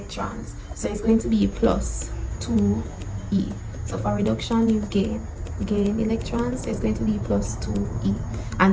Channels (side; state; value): both; identical; correlation 1.00